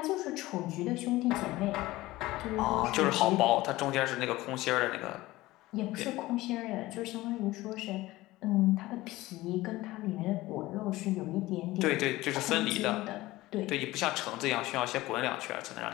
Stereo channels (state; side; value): quieter; right; 18.3 dB